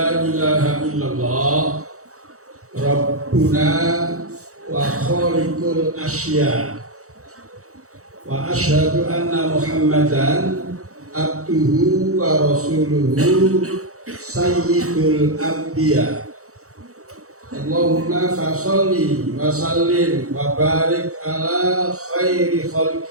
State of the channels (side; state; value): left; late; 0.65 ms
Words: ilaha illallah Rabbuna wa khaliqul asya. Wa asyhadu anna Muhammadan abduhu wa rasuluhu sayyidul anbiya. Allahumma fasalli wa sallim wa barik ala khairi